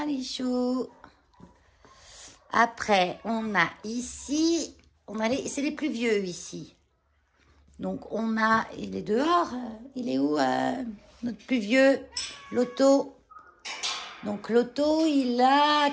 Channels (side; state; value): both; identical; correlation 1.00